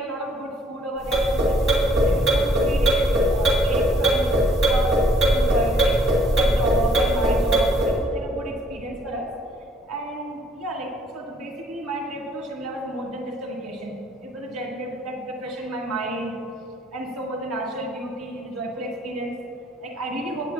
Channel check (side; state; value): both; normal; correlation 0.63